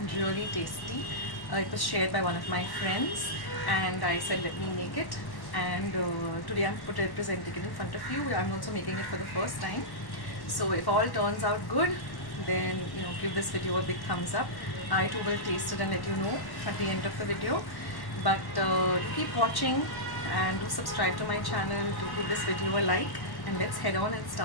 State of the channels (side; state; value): right; late; 1.1 ms